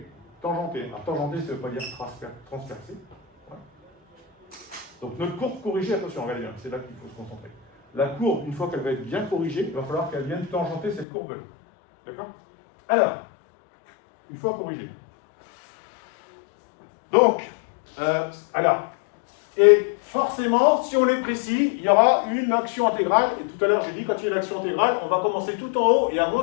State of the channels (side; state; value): right; drops out; at 11.1 s